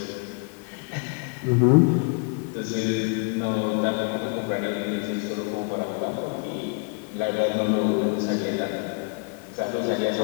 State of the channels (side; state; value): right; quieter; 35.8 dB